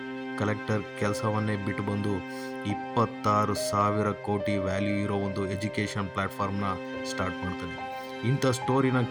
ಕಲೆಕ್ಟರ್ ಕೆಲಸವನ್ನೇ ಬಿಟ್ಟು ಬಂದು 26,000 ಕೋಟಿ ವ್ಯಾಲ್ಯೂ ಇರೋ ಒಂದು ಎಜುಕೇಷನ್ ಪ್ಲ್ಯಾಟ್ಫಾರ್ಮ್ನ ಸ್ಟಾರ್ಟ್ ಮಾಡ್ತಾನೆ. ಇಂಥ ಸ್ಟೋರಿನ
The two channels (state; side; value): identical; both; correlation 1.00